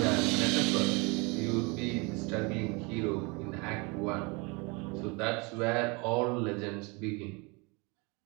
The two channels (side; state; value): left; quieter; 28.8 dB